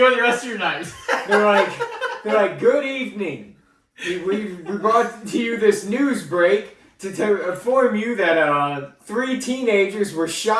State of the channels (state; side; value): identical; both; correlation 1.00